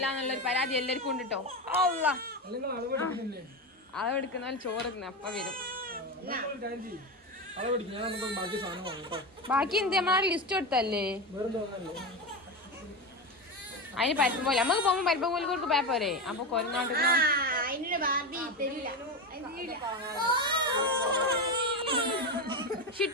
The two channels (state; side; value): normal; both; correlation 0.18